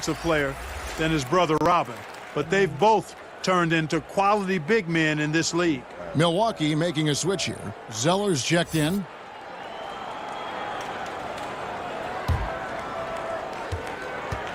player than his brother Robin. But they've both turned into quality big men in this league. Milwaukee making a switch here. Zeller's checked in.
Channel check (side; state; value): both; identical; correlation 1.00